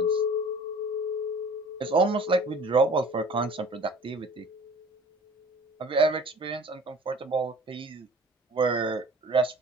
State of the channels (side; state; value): both; normal; correlation 0.46